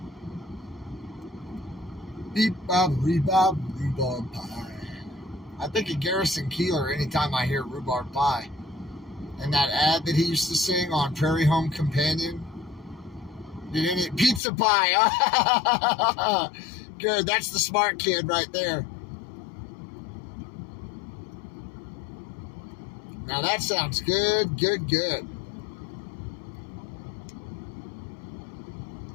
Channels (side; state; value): right; drops out; at 14.4 s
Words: Beep bob rhubarb pie. I think of Garrison Keillor anytime I hear rhubarb pie. And that ad that he used to sing on Prairie Home Companion. Pizza pie. Good, that's the smart kid right there. Now that sounds good, good, good.